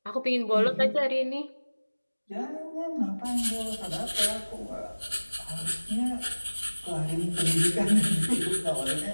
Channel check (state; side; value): inverted; both; correlation -1.00